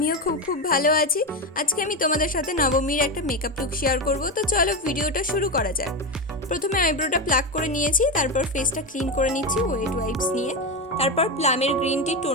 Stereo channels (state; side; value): normal; both; correlation 0.14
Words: খুব ভালো আছি। আজকে আমি তোমাদের সাথে নবমীর একটা মেকআপ লুক শেয়ার করব। তো চলো ভিডিওটা শুরু করা যাক। প্রথমে আইব্রোটা প্লাক করে নিয়েছি, তারপর ফেসটা ক্লিন করে নিচ্ছি ওয়েট ওয়াইপস নিয়ে। তারপর প্লামের গ্রিন টি